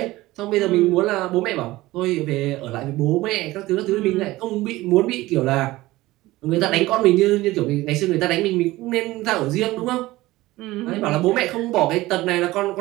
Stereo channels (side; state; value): left; quieter; 18.2 dB